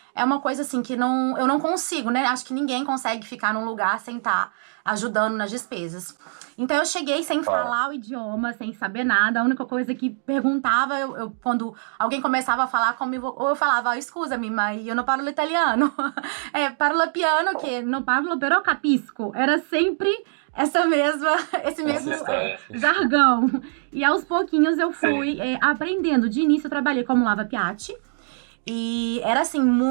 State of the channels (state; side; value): silent; left; digital silence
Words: é uma coisa assim que eu não consigo, né? Acho que ninguém consegue ficar num lugar sem estar ajudando nas despesas. Então eu cheguei sem falar o idioma, sem saber nada. A única coisa que perguntava, quando alguém começava a falar comigo, ou eu falava, scusami, ma io non parlo italiano. Parlo piano, que non parlo, però capisco. Era sempre esse mesmo jargão. E aos pouquinhos eu fui aprendendo. De início eu trabalhei como lava-piatti. E era, assim,